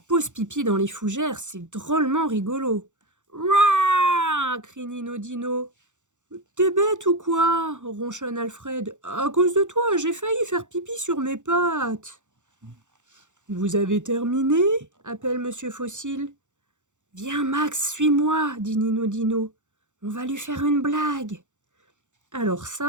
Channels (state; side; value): late; left; 0.85 ms